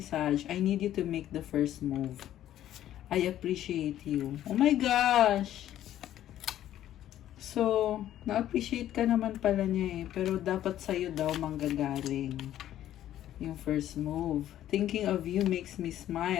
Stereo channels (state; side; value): quieter; right; 12.2 dB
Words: I need you to make the first move. I appreciate you. Oh my gosh! So, na-appreciate ka naman pala niya eh. Pero dapat sa'yo daw manggagaling yung first move. Thinking of you makes me